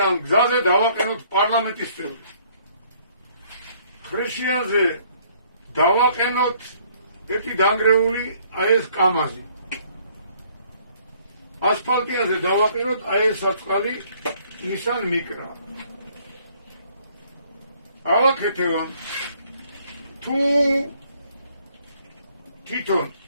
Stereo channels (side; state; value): both; inverted; correlation -0.62